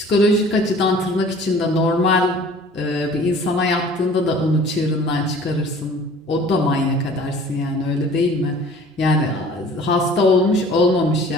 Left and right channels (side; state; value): both; normal; correlation 0.48